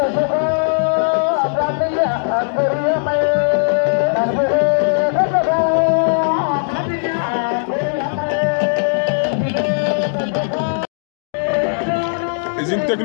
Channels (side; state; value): right; silent; digital silence